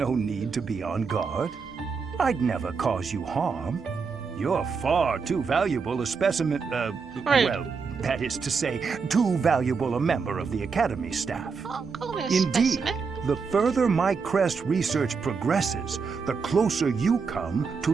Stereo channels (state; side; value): quieter; left; 5.3 dB